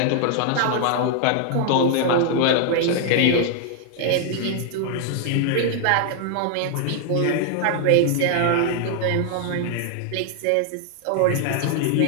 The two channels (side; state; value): both; different; correlation 0.00